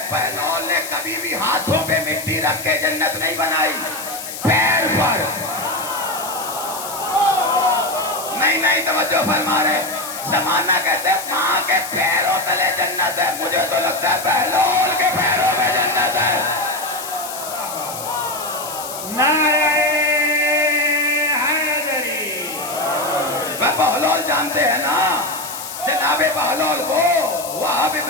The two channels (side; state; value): left; noise; hiss, 9 dB below the sound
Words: بہلول نے کبھی بھی ہاتھوں پہ مٹی رکھ کے جنت نہیں بنائی, پیر پر. نہیں توجہ فرما رہے. زمانہ کہتے ہیں ماں کے پیروں تلے جنت ہے, مجھے تو لگتا ہے بہلول کے پیروں میں جنت ہے. نعرہ حیدری. بہلول جانتے ہیں نا, جناب بہلول کو وہاب